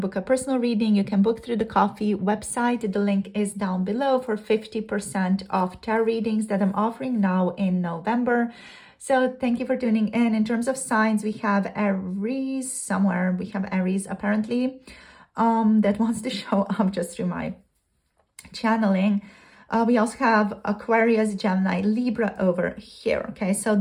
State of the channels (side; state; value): both; identical; correlation 1.00